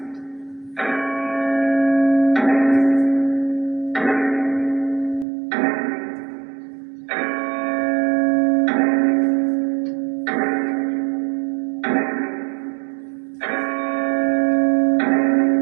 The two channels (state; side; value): drops out; left; at 5.2 s